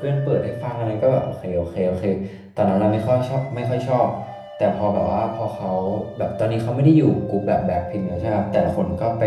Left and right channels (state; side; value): identical; both; correlation 1.00